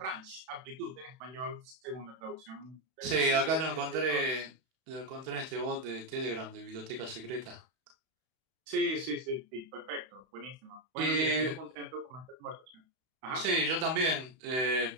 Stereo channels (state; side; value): late; left; 31 ms